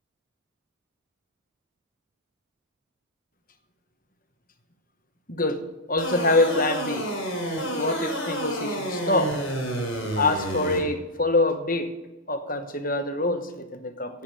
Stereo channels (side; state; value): both; normal; correlation -0.05